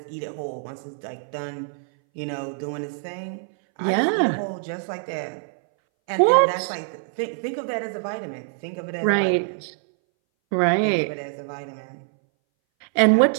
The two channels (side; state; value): left; silent; 61 dB below the other